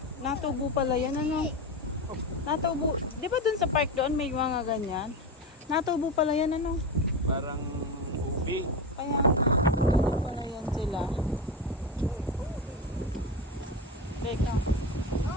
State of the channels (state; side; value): normal; both; correlation 0.19